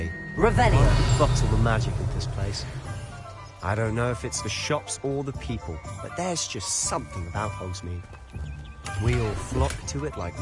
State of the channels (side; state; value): both; identical; correlation 1.00